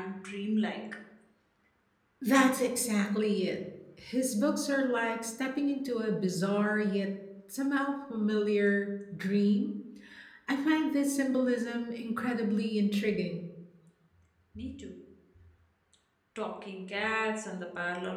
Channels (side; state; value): both; identical; correlation 1.00